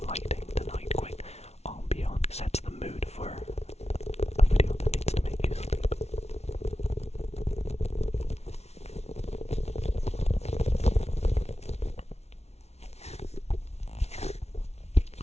lighting tonight. Quick ambiance sets the mood for a video that needs to make you sleep.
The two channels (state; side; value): late; right; 0.31 ms